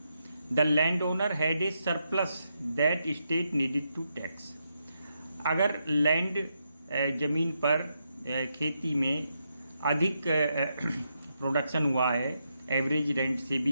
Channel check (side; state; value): both; inverted; correlation -0.82